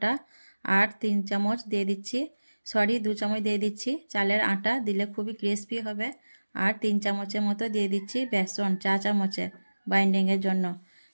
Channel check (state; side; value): inverted; both; correlation -1.00